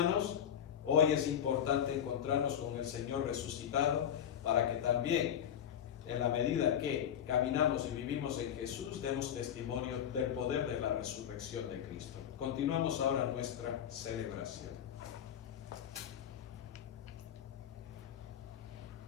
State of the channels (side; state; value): right; quieter; 9.5 dB